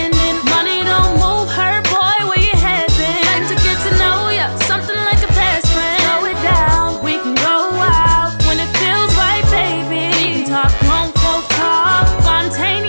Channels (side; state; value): both; inverted; correlation -1.00